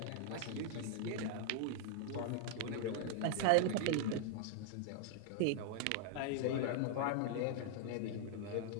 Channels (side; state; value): both; different; correlation -0.01